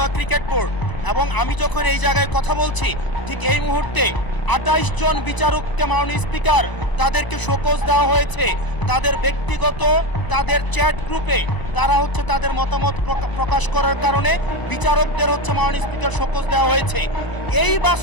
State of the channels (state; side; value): late; right; 1.0 ms